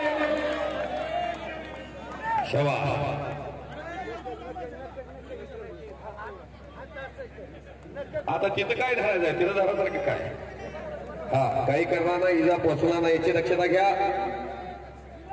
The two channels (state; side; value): identical; both; correlation 1.00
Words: शवा. आता तिथं काय धरायचं आहे, तिथं धरासारखं काय? हा, काही करणार नाही, इजा पोचणार नाही याची दक्षता घ्या.